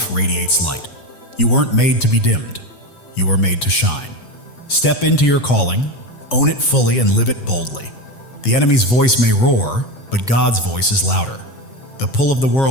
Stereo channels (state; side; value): late; right; 8.2 ms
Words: radiates light. You weren't made to be dimmed. You were made to shine. Step into your calling, own it fully, and live it boldly. The enemy's voice may roar, but God's voice is louder. The pull of the